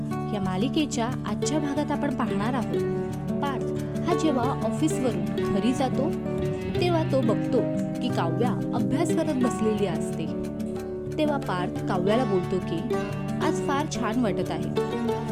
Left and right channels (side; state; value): both; identical; correlation 1.00